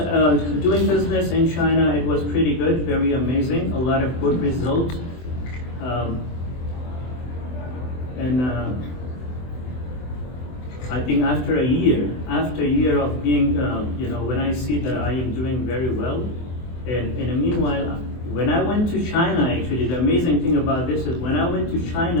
doing business in China, it was pretty good, very amazing, a lot of good results. I think after a year of being, when I see that I am doing very well, and in the meanwhile, when I went to China, actually, the amazing thing about this is when I went to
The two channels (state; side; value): late; right; 24 ms